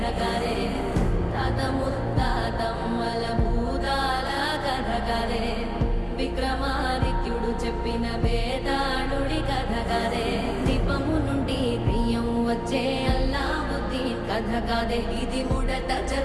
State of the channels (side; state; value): both; identical; correlation 1.00